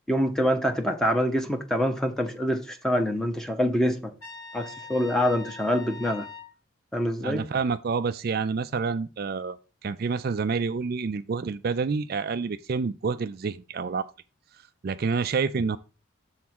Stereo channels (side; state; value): both; normal; correlation 0.59